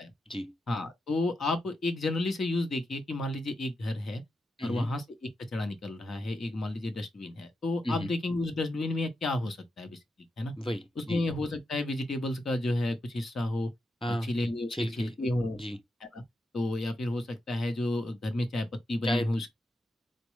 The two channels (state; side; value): normal; both; correlation 0.86